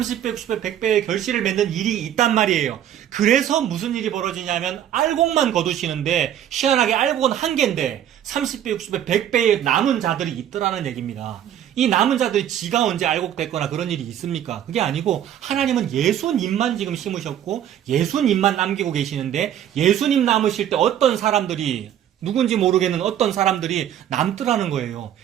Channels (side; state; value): left; quieter; 10.6 dB